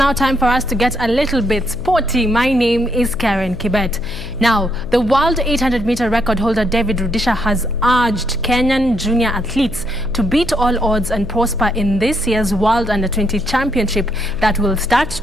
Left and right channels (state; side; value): noise; left; hum, 12 dB below the sound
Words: time for us to get a little bit sporty. My name is Karen Kibet. Now, the world 800-meter record holder David Rudisha has urged Kenyan junior athletes to beat all odds and prosper in this year's World Under-20 Championship that will start